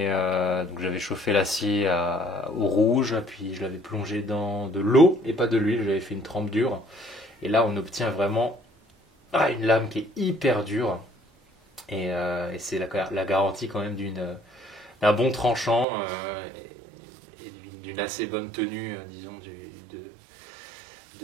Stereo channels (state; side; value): drops out; left; at 15.9 s